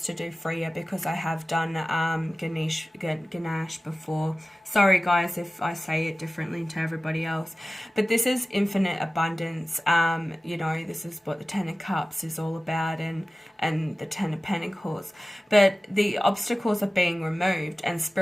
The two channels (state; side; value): normal; both; correlation 0.96